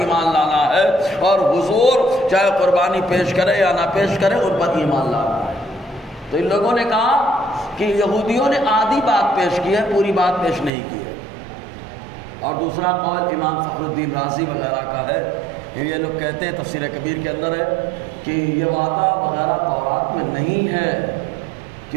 لانا ہے، اور حضور چاہے قربانی پیش کرے یا نہ پیش کرے ان پر ایمان لانا ہے۔ تو ان لوگوں نے کہا کہ یہودیوں نے آدھی بات پیش کی ہے، پوری بات پیش نہیں کی ہے۔ اور دوسرا قول امام فخر الدین رازی وغیرہ کا ہے، یہ لوگ کہتے ہیں تفسیر کبیر کے اندر ہے کہ یہ وعدہ وغیرہ تورات میں نہیں ہے،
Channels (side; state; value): left; drops out; at 10.7 s